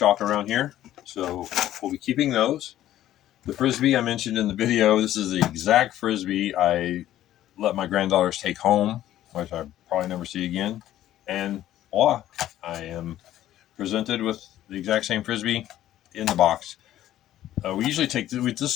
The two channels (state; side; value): quieter; right; 13.0 dB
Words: around here, so we'll be keeping those. The Frisbee I mentioned in the video, this is the exact Frisbee I let my granddaughters take home, which I probably never see again. And voila, I am presented with the exact same Frisbee in the box. We usually this